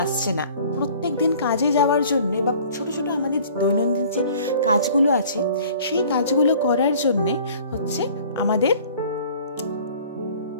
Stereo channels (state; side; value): inverted; both; correlation -0.50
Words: আসছে না। প্রত্যেক দিন কাজে যাওয়ার জন্য বা ছোট ছোট আমাদের দৈনন্দিন যে কাজগুলো আছে, সেই কাজগুলো করার জন্যে হচ্ছে আমাদের